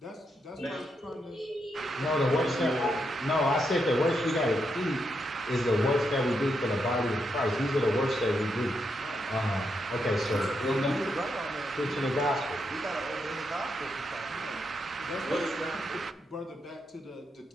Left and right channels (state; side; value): normal; both; correlation 0.81